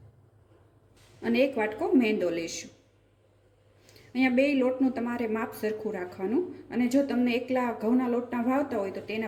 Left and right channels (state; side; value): identical; both; correlation 1.00